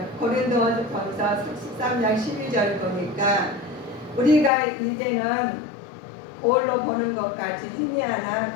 고린도전서 13장 12절 보니까 우리가 이제는 거울로 보는 것 같이 희미하나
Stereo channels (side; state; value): right; drops out; at 4.5 s